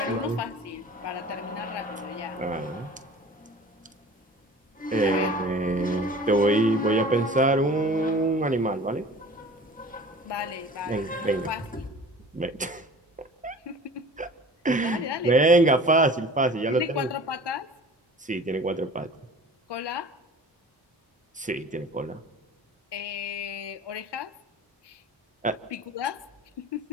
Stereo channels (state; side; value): normal; both; correlation 0.42